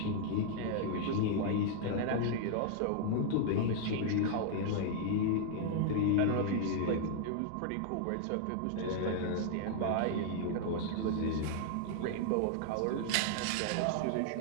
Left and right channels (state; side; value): different; both; correlation -0.01